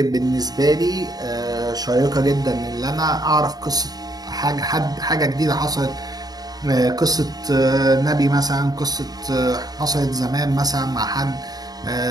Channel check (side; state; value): left; late; 0.19 ms